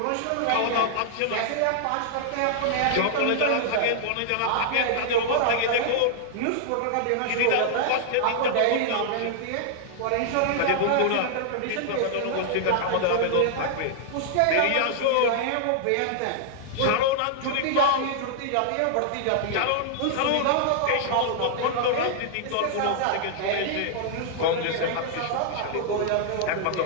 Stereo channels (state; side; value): different; both; correlation -0.01